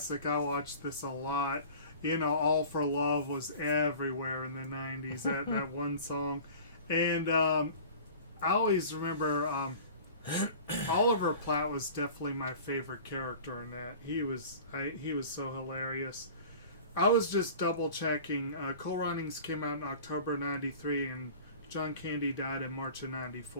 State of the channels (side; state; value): both; inverted; correlation -0.41